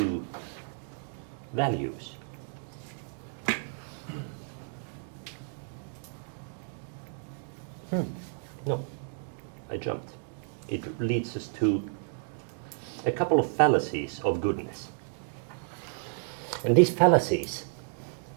values. No, I jumped. It leads us to a couple of fallacies of goodness. And these fallacies,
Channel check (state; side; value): silent; left; 57 dB below the other